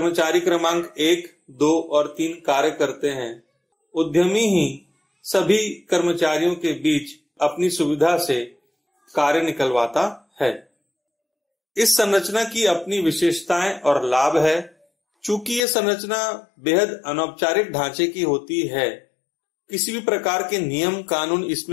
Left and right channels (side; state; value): right; drops out; at 15.6 s